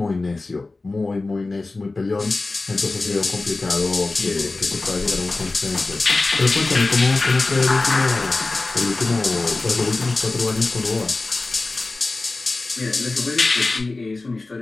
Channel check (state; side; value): quieter; right; 3.3 dB